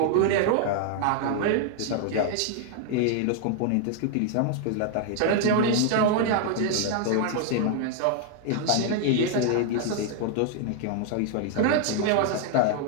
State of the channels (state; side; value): different; both; correlation 0.00